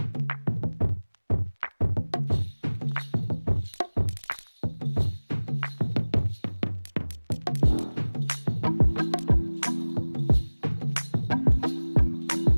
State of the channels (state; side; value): inverted; both; correlation -1.00